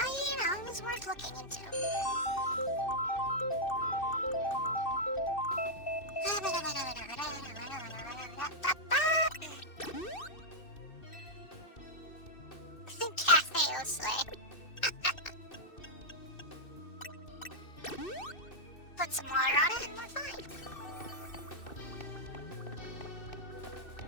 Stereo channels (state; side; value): late; right; 2.6 ms